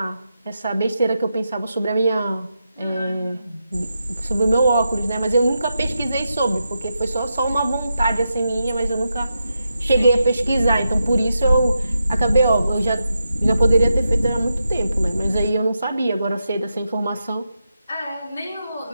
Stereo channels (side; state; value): both; inverted; correlation -0.87